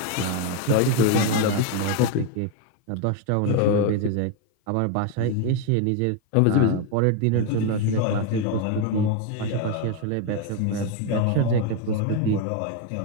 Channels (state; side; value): different; both; correlation 0.02